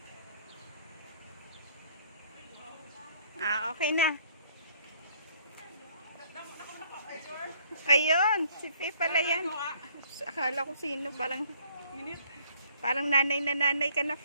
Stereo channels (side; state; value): both; inverted; correlation -0.62